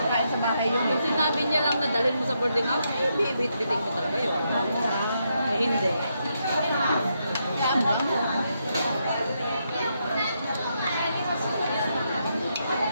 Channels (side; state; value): both; inverted; correlation -0.80